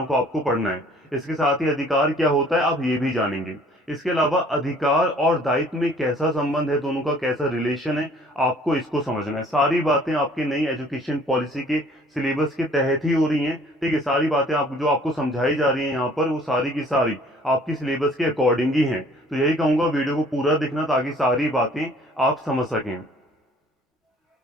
को आपको पढ़ना है। इसके साथ ही अधिकार क्या होता है आप ये भी जानेंगे। इसके अलावा अधिकार और दायित्व में कैसा संबंध है, दोनों का कैसा रिलेशन है, आपको इसको समझना है। सारी बातें आपकी नई एजुकेशन पॉलिसी के सिलेबस के तहत ही हो रही हैं। ठीक है, सारी बातें आप जो आपको समझाई जा रही हैं यहाँ पर, वो सारी की सारी आपकी सिलेबस के अकॉर्डिंग ही हैं। तो यही कहूंगा, वीडियो को पूरा देखना ताकि सारी बातें आप समझ सकें।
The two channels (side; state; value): both; normal; correlation 0.55